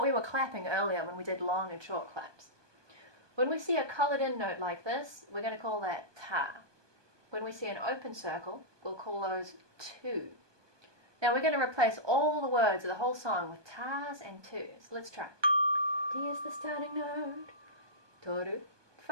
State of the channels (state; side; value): late; left; 1.2 ms